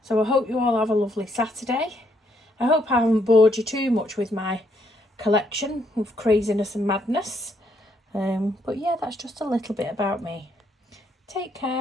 So I hope you all have a lovely Saturday. I hope I haven't bored you too much with my collection of craziness and madness. But yeah, that's just a little bit about me. Take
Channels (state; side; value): normal; both; correlation 0.73